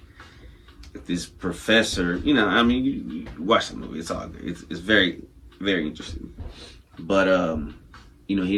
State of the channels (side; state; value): both; identical; correlation 1.00